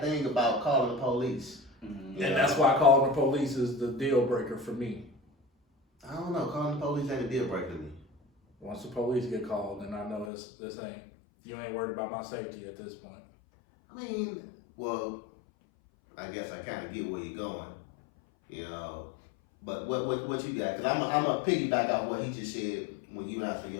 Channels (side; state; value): right; drops out; at 10.3 s